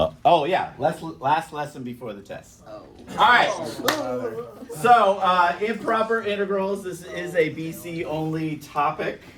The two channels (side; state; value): both; identical; correlation 1.00